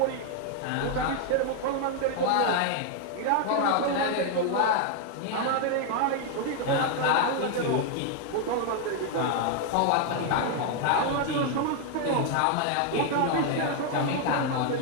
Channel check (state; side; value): different; both; correlation 0.00